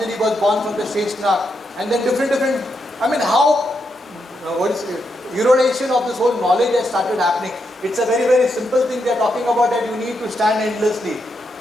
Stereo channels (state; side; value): normal; both; correlation 0.82